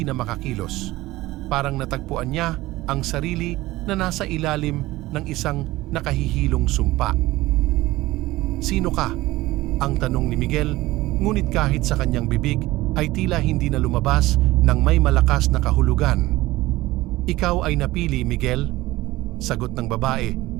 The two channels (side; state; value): left; quieter; 18.2 dB